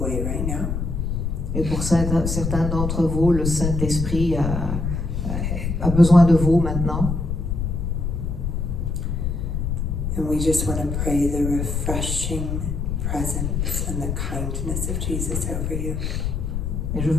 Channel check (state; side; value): noise; left; rumble, 1 dB below the sound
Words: right now. Et pour certains d'entre vous, le Saint-Esprit a besoin de vous maintenant. And we just want to pray the refreshing presence and the kindness of Jesus over you. Et je